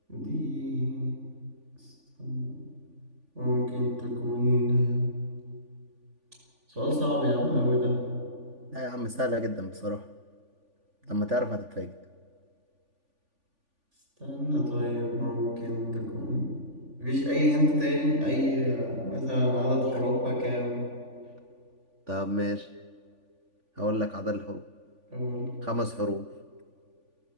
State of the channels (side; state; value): left; late; 3.5 ms